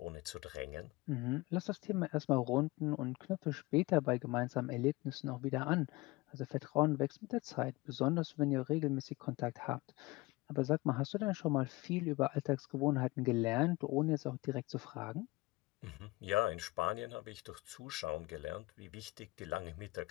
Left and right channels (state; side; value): quieter; right; 21.9 dB